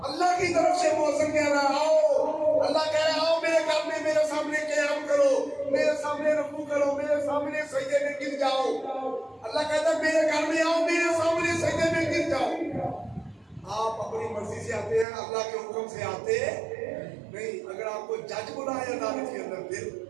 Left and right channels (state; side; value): drops out; left; at 15.1 s